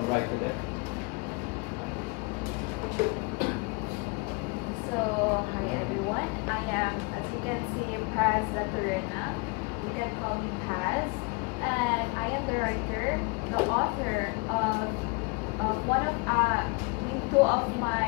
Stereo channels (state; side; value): quieter; right; 29.5 dB